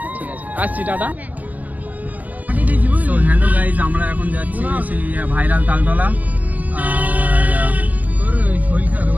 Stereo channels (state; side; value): late; left; 0.078 ms